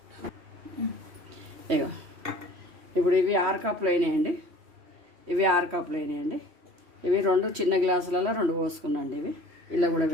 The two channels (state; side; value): late; left; 3.1 ms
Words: ఇగో ఇప్పుడు ఇవి 6 కప్పులు అయినాయండి, ఇవి 6 కప్పులు అయినాయండి. ఇవి 2 చిన్న గ్లాసులలో 2 పోసుకున్నాండి. ఇవి ఇలా కూడా